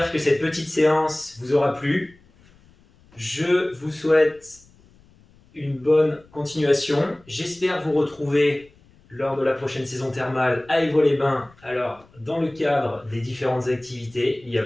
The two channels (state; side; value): noise; left; rumble, 29 dB below the sound